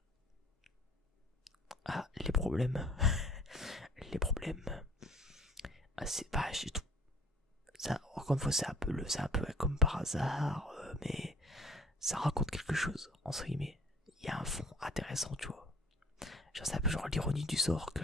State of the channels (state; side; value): normal; both; correlation 0.52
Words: Ah, les problèmes. Les problèmes. Ah, c'est... Bah, j'ai tout... Ça, encore une fois, c'est un peu comme par hasard, mais ça raconte quelque chose, entre guillemets. Il y a un fond intéressant, tu vois. Genre, c'est un peu genre l'ironie du sort que